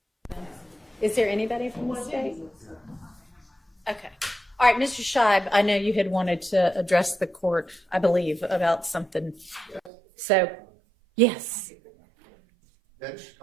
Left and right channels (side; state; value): left; drops out; at 9.9 s